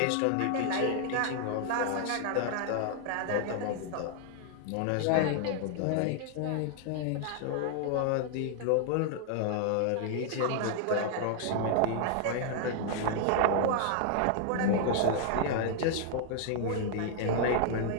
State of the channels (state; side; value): different; both; correlation 0.00